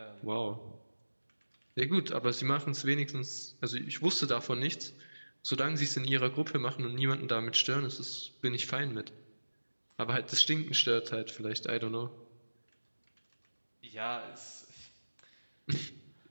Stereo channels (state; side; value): inverted; both; correlation -1.00